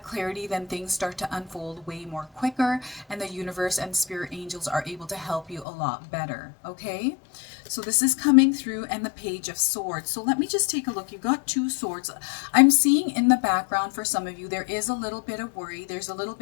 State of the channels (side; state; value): right; drops out; at 5.7 s